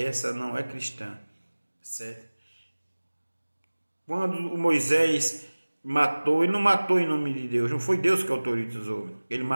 não é cristã, certo? Quando o Moisés matou, ele não matou em nome de Deus, não foi Deus que autorizou, ele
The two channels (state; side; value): inverted; both; correlation -1.00